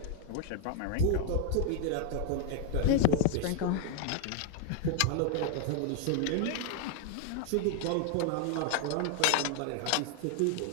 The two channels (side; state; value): both; different; correlation 0.01